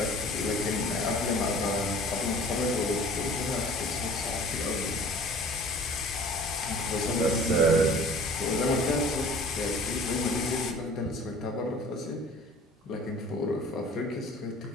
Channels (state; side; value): normal; both; correlation 0.48